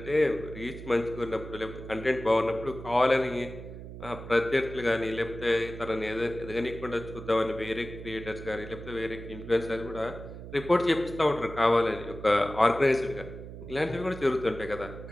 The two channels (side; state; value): right; noise; hum, 12 dB below the sound